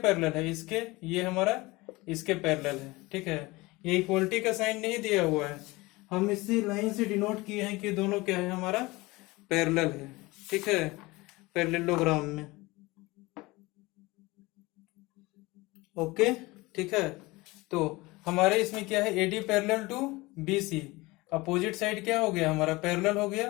है, इसके, ये हमारा इसके पैरेलल है, ठीक है। ये इक्वलिटी का साइन नहीं दिया हुआ है, हम इसी लाइन से डिनोट किए हैं कि दोनों क्या है हमारा पैरेलल है, ठीक है, पैरेललोग्राम में। ओके, ठीक है। तो हमारे इसमें क्या है, AD parallel to BC, opposite side क्या हो गया हमारा पैरेलल हो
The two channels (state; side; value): quieter; right; 22.1 dB